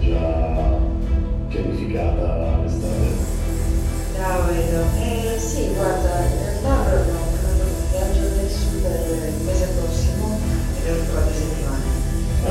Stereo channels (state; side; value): identical; both; correlation 1.00